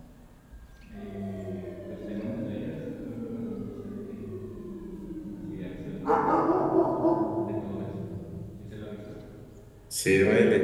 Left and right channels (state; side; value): identical; both; correlation 1.00